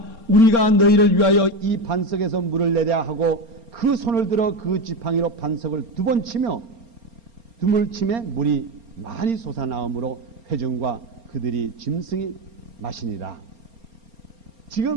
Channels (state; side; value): late; left; 4.3 ms